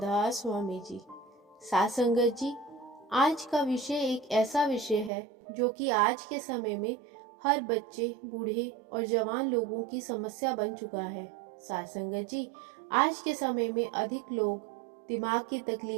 स्वामी जी। सात संगत जी, आज का विषय एक ऐसा विषय है जो कि आज के समय में हर बच्चे, बूढ़े और जवान लोगों की समस्या बन चुका है। सात संगत जी, आज के समय में अधिक लोग दिमाग की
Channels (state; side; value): drops out; left; at 5.1 s